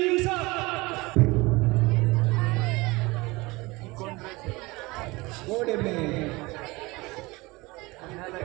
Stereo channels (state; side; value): quieter; left; 23.0 dB